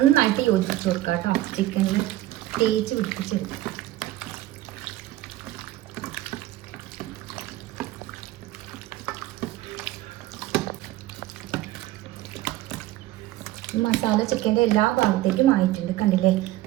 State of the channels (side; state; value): left; quieter; 15.7 dB